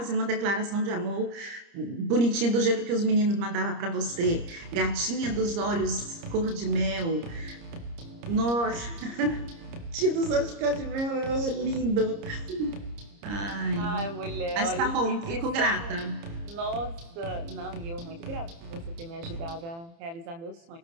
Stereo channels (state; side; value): late; left; 30 ms